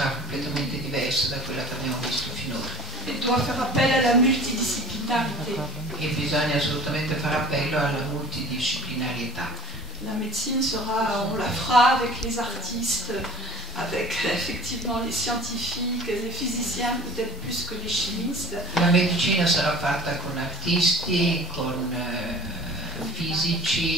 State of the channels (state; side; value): normal; both; correlation 0.48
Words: completamente diversa da quella che abbiamo visto finora. Et doit faire appel à la multidisciplinarité. E bisogna assolutamente fare appello alla multidisciplinarietà. La médecine sera, on la fera avec les artistes, avec effectivement les scientifiques, les physiciens peut-être plus que les chimistes. La medicina sarà fatta con artisti, con